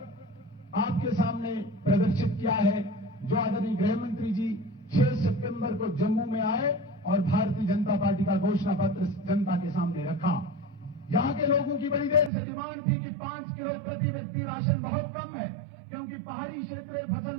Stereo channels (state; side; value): drops out; left; at 12.3 s